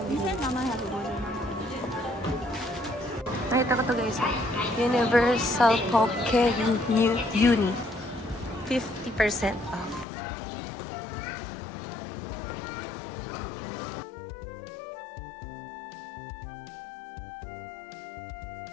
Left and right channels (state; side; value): drops out; right; at 10.1 s